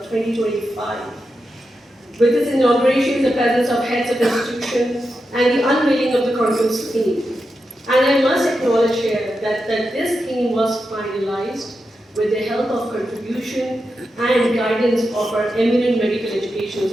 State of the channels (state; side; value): normal; both; correlation 0.88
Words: 2025 with its inauguration in the presence of heads of institutions and the unveiling of the conference theme. And I must acknowledge here that this theme was finalized with the help of contribution and guidance of our eminent medical